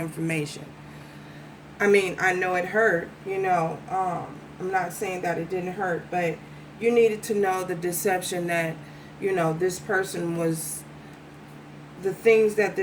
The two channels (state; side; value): identical; both; correlation 1.00